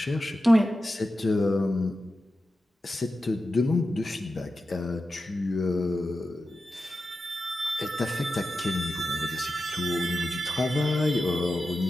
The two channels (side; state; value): both; normal; correlation 0.91